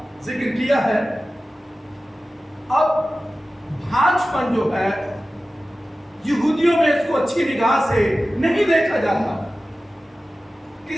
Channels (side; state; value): both; normal; correlation 0.95